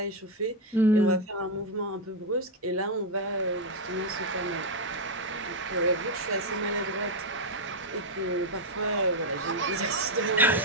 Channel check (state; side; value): normal; both; correlation 0.02